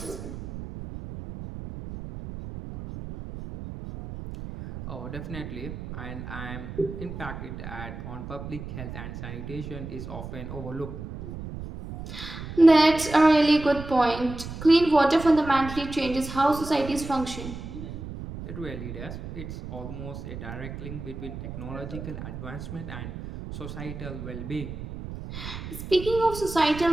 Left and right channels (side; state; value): right; noise; rumble, 9 dB below the sound